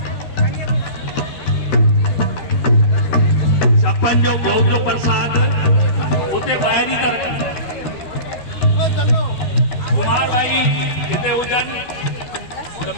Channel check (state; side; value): late; right; 12 ms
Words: छप्पन जो भोग जो प्रसाद उते ॿाहिरि ई था रखनि कुमार भाई हिते हुजनि त